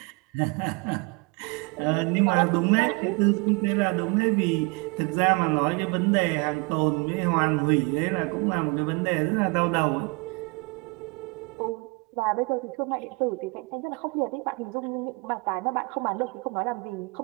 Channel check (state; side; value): quieter; left; 28.5 dB